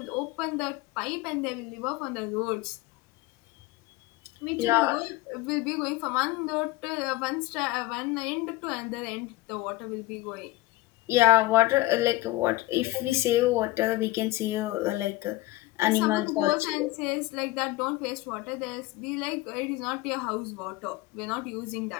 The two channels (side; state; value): right; quieter; 19.3 dB